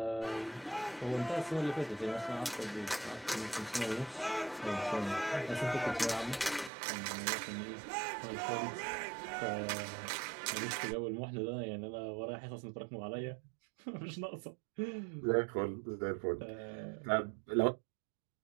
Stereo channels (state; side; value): drops out; left; at 6.7 s